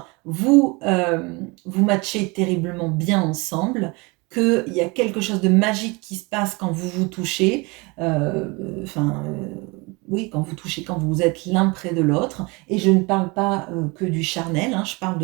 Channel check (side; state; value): left; quieter; 26.9 dB